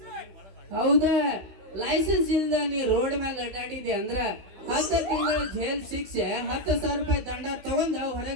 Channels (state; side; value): late; left; 16 ms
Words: ಹೌದ, ಲೈಸೆನ್ಸ್ ಇಲ್ದ ನೀ ರೋಡ್ ಮೇಲೆ ಅಡ್ಡಾಡಿದೆ ಅಂದ್ರ 10 ತಿಂಗಳ ಜೈಲ್ ಶಿಕ್ಷೆ, 10,000 ರೂಪಾಯಿ ದಂಡ ತಗೊಂಡ